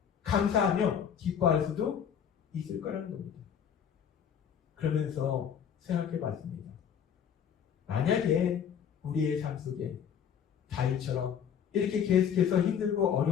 감사하며 기뻐할 수도 있을 거라는 겁니다. 그러면서 생각해 봤습니다. 만약에 우리의 삶 속에 다윗처럼 이렇게 계속해서 힘들고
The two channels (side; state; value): right; quieter; 8.1 dB